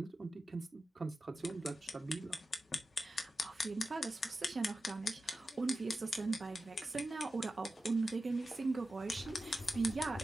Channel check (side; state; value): both; normal; correlation 0.92